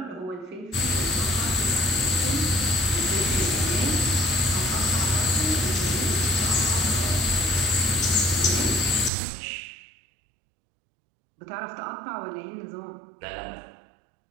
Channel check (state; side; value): drops out; left; at 9.1 s